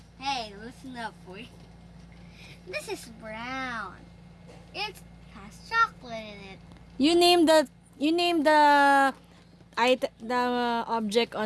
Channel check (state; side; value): identical; both; correlation 1.00